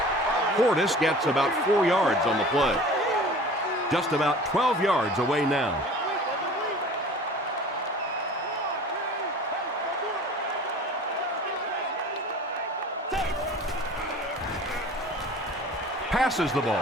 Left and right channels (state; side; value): normal; both; correlation 0.43